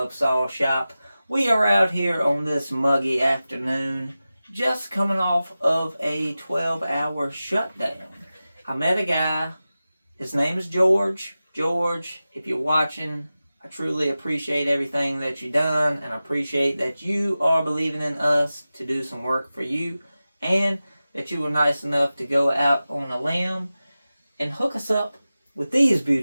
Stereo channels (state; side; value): inverted; both; correlation -0.95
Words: Saw Shop. We are out here on this muggy afternoon, just coming off of a 12-hour shutdown. I met a guy, his name is George. George, if you're watching, I truly appreciate everything that you've done, and I appreciate that you are believing in us to do some work for you, and that you were nice enough to go out on a limb and hook us up with these